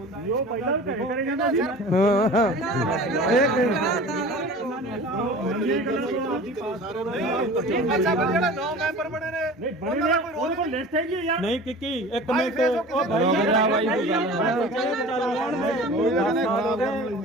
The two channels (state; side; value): normal; both; correlation 0.40